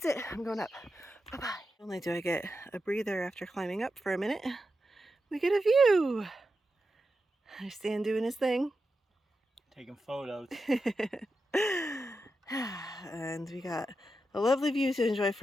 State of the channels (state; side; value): normal; both; correlation 0.89